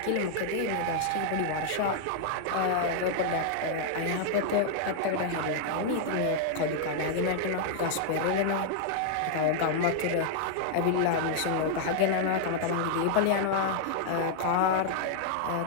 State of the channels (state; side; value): different; both; correlation 0.00